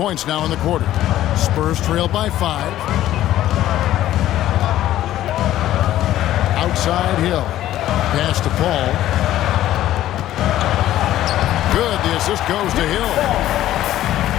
now in the quarter. Spurs trail by 5. Outside Hill. Pass to Paul. Good, the assist goes to Hill.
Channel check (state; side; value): quieter; right; 13.4 dB